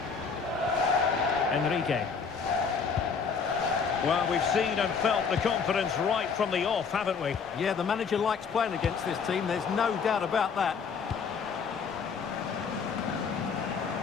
Enrique. Well, we've seen and felt the confidence right from the off, haven't we? Yeah, the manager likes playing against this team, there's no doubt about that.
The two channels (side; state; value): right; quieter; 5.8 dB